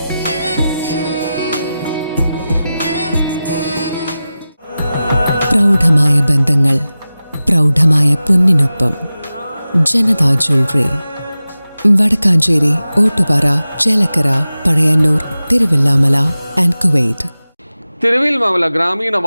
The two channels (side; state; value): both; inverted; correlation -0.95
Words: പ്രൗഢമായ ബന്ധങ്ങൾ, പ്രൗഢമായ പൊന്നിനൊപ്പം. Janatha jewellery, Vadakkanchery, Ottupara, Chelakkara, Pazhayannur, Thiruvillwamala and Kuwait. Thiruvillwamala ഗ്രാമീണ